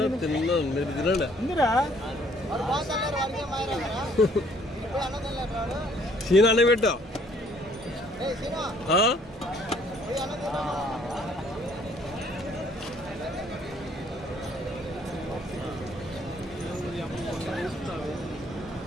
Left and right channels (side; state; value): both; normal; correlation 0.62